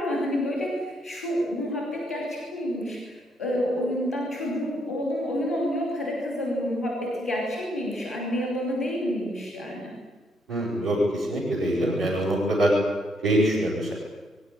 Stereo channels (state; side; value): normal; both; correlation 0.73